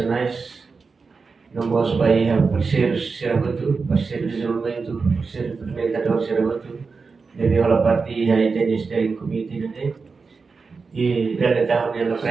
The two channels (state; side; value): quieter; left; 4.7 dB